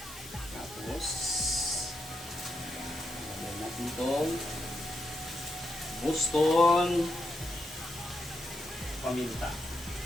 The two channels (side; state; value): both; normal; correlation 0.83